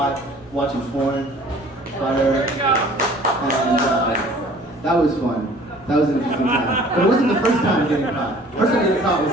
watching porn, butter, and that was fun. That was an interesting time. But it wasn't the first time getting caught. The first time getting caught was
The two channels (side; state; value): both; normal; correlation 0.51